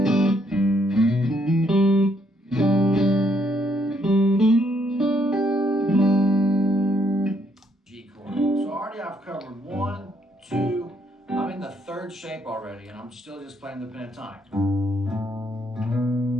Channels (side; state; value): both; normal; correlation 0.71